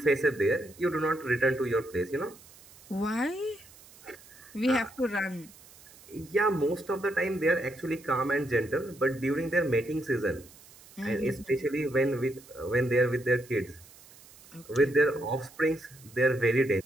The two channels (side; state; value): right; noise; hiss, 23 dB below the sound